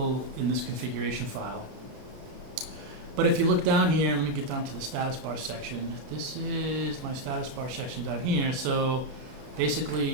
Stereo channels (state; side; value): late; left; 31 ms